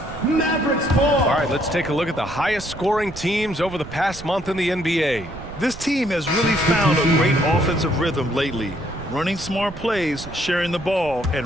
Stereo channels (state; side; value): noise; right; rumble, 14 dB below the sound